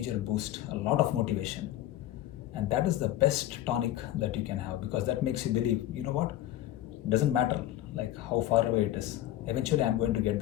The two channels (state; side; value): quieter; right; 13.8 dB